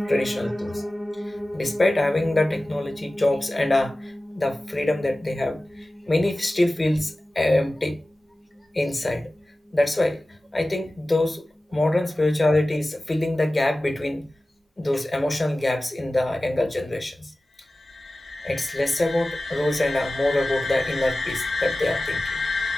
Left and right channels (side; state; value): both; normal; correlation 0.96